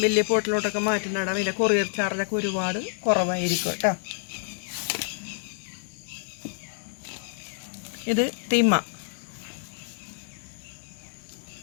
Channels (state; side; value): silent; right; digital silence